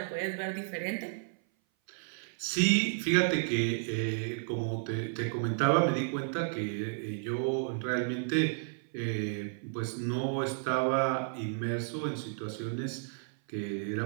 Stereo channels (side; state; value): left; silent; 56 dB below the other